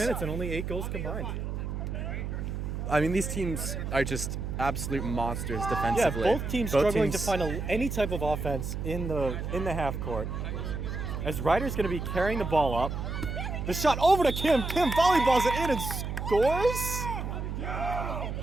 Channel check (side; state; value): right; noise; hum, 4 dB below the sound